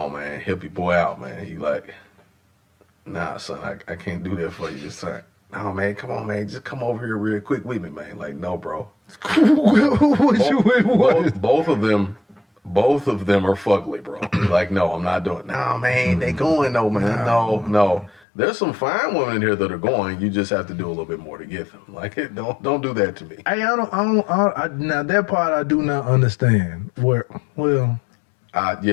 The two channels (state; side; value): drops out; right; at 18.2 s